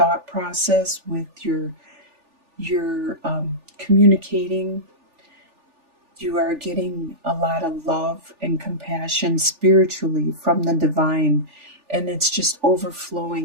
process, with your communicating. You are getting a lot of love and compassion spiritually from the divine, and it's just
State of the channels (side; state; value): left; late; 3.4 ms